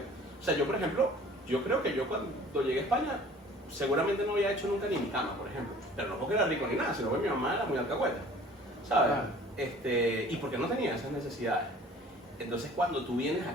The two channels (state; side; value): normal; both; correlation 0.49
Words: o sea, yo por ejemplo, yo creo que yo cuando llegué a España, seguramente no había hecho nunca ni mi cama, por ejemplo. Pero no porque era rico ni nada, sino porque mi mamá era muy alcahueta, ¿sabes? Y porque no tenía esas necesidades. Entonces cuando tú vienes